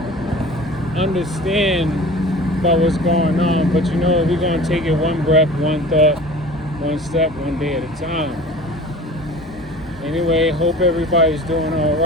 understand about what's going on. But we're gonna take it one breath, one thought, one step, one day at a time. Anyway, hope everybody's doing all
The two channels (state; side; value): normal; both; correlation 0.41